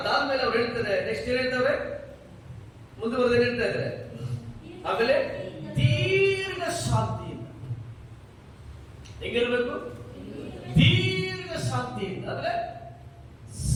ಅದಾದ್ಮೇಲೆ ಅವ್ರು ಹೇಳ್ತಾರೆ, ನೆಕ್ಸ್ಟ್ ಏನ್ ಹೇಳ್ತಾರೆ, ಮುಂದುವರೆದ ಹೇಳ್ತಾ ಇದ್ದಾರೆ, ಆಮೇಲೆ ದೀರ್ಘ ಶಾಂತಿಯಿಂದ. ಹೆಂಗಿರ್ಬೇಕು? ದೀರ್ಘ ಶಾಂತಿಯಿಂದ ಅಂದ್ರೆ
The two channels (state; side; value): identical; both; correlation 1.00